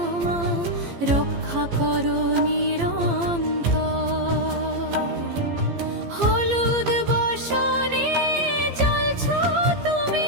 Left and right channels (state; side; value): late; left; 15 ms